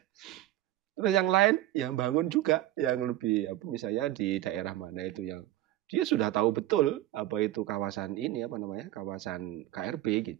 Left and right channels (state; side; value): quieter; left; 14.6 dB